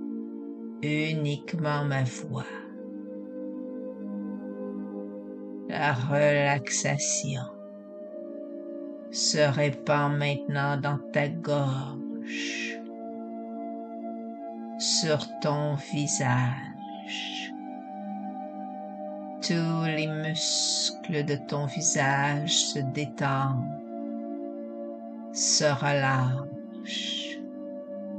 uniquement ma voix. La relaxation se répand maintenant dans ta gorge, sur ton visage. Tous les muscles de ton visage se détendent, se relâchent.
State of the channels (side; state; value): both; identical; correlation 1.00